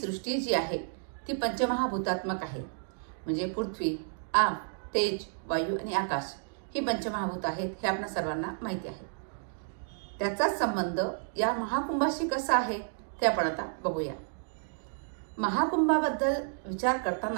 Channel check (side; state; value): left; silent; digital silence